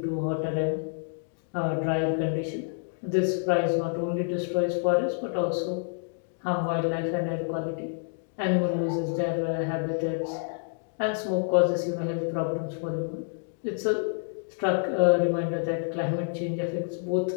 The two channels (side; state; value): right; silent; digital silence